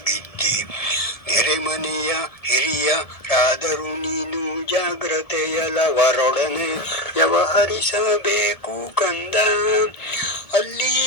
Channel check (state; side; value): late; right; 1.7 ms